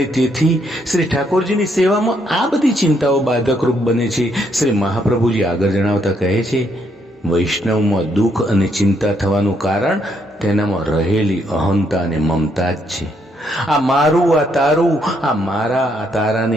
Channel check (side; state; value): both; normal; correlation 0.73